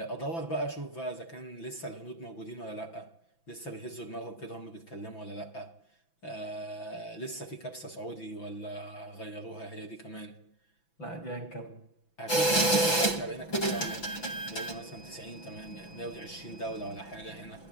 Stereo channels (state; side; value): late; right; 6.0 ms